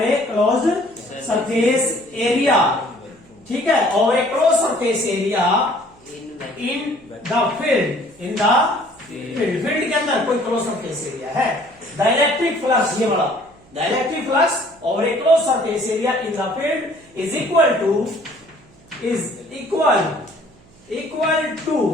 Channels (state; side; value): noise; right; hum, 28 dB below the sound